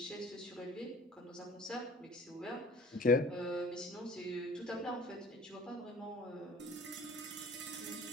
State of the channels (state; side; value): normal; both; correlation 0.47